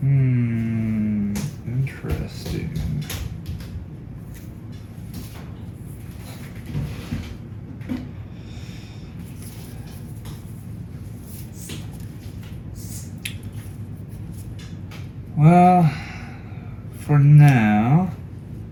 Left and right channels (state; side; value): identical; both; correlation 1.00